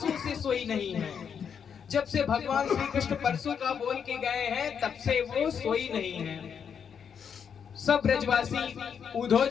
से सोई नहीं है। जब से भगवान श्री कृष्ण परसों का बोल के गए हैं, तब से वो सोई नहीं है। सब ब्रजवासी उद्धव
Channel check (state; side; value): quieter; right; 7.3 dB